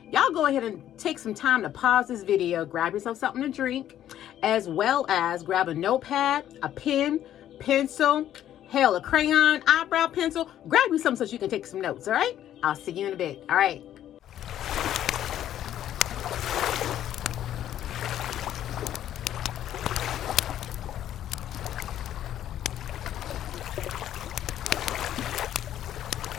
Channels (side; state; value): right; quieter; 11.5 dB